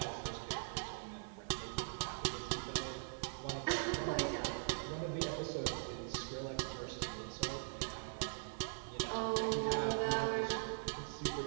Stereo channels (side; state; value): left; silent; 50 dB below the other